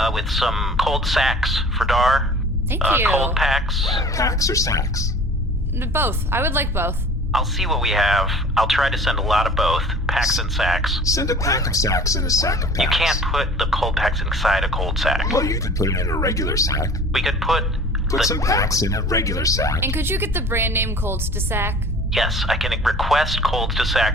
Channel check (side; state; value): both; normal; correlation 0.45